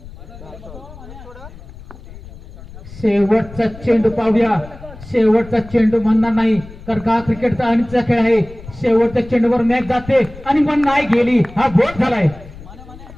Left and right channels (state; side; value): noise; left; rumble, 17 dB below the sound